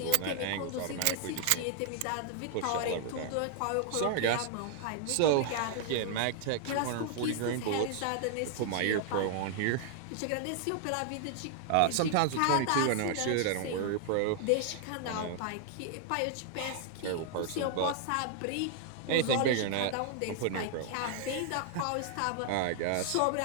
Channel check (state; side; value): different; both; correlation 0.00